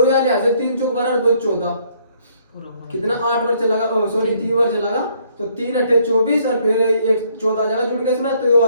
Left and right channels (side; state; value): both; inverted; correlation -0.66